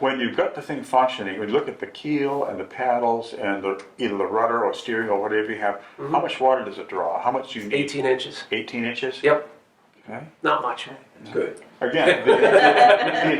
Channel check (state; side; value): identical; both; correlation 1.00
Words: you've got the thing functioning, when you look at the keel and the paddles and either the rudder or steering or whatever you have, how much water does it draw? How much do you need? 18 inches. 18 inches? Yep, Okay. not much. Good. Again, the